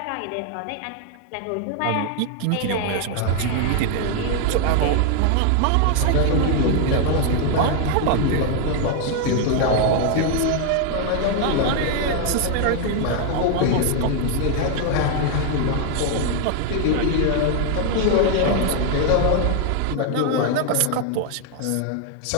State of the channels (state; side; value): different; both; correlation 0.00